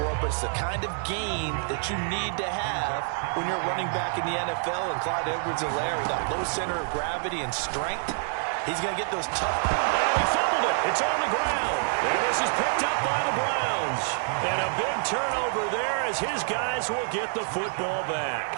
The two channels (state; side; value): silent; left; 60 dB below the other